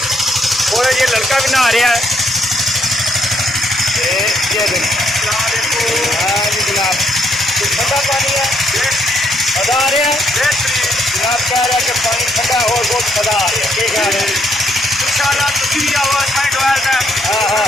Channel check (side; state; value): both; normal; correlation 0.73